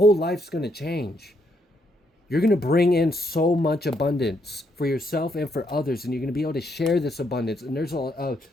life's going to change. You're going to bring in so much abundance for yourself and for others. And you're going to be able to share this abundance. And there's a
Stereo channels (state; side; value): normal; both; correlation 0.75